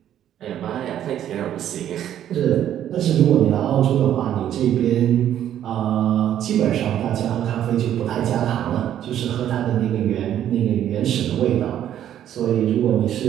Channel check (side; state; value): left; quieter; 10.9 dB